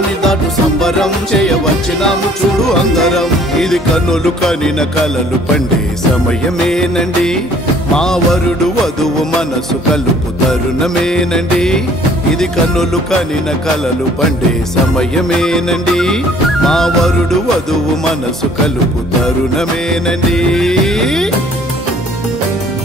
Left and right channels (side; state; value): both; normal; correlation 0.56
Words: దాటు సంబరం చేయవచ్చినాము చూడు అందరం. ఇది కన్నులు కనిన కలలు పండే సమయమేనండి, మా వరుడు వధువు మనసు కలుపు తరుణమేనండి. ఇది కన్నులు కనిన కలలు పండే సమయమేనండి, మా వరుడు వధువు మనసు కలుపు తరుణమేనండి.